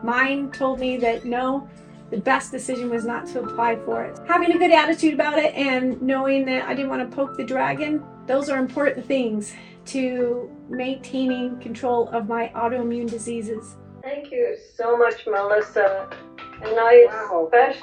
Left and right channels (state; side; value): identical; both; correlation 1.00